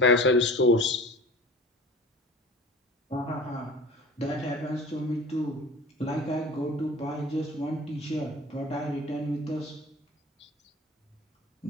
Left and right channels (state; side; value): normal; both; correlation 0.41